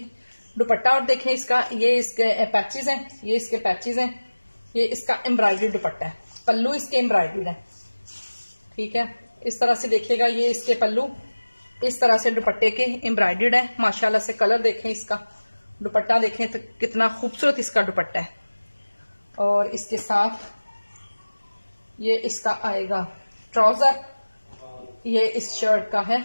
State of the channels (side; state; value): both; inverted; correlation -1.00